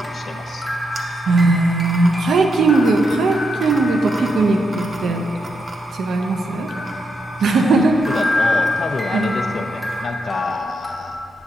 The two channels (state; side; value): normal; both; correlation 0.82